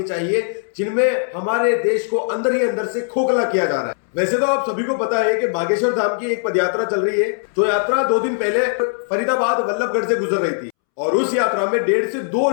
चाहिए जिनमें हमारे देश को अंदर ही अंदर से खोखला किया जा रहा है। वैसे तो आप सभी को पता है कि बागेश्वर धाम की एक पदयात्रा चल रही है, जो यात्रा 2 दिन पहले फरीदाबाद वल्लभगढ़ से गुजर रही थी और उस यात्रा में 1.5 से 2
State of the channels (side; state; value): right; silent; 66 dB below the other